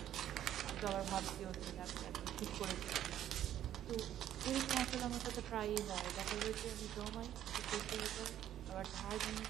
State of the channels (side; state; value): left; quieter; 11.4 dB